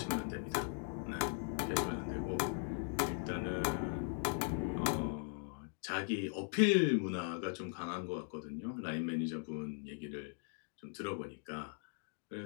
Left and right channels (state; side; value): silent; right; 51 dB below the other